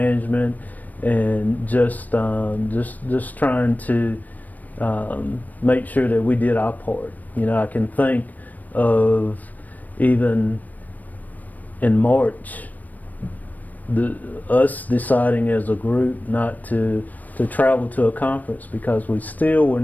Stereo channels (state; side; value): late; right; 0.081 ms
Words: and just trying to make sure that we did our part. You know, I can think of even in March, us deciding as a group not to travel to a conference because we still were